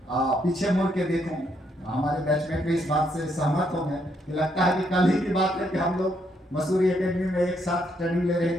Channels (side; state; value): both; normal; correlation 0.74